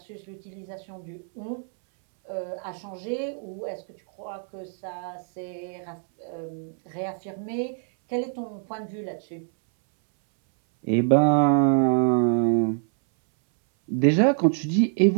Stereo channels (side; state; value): left; silent; 61 dB below the other